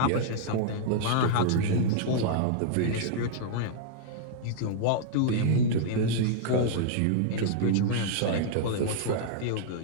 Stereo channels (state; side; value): different; both; correlation -0.01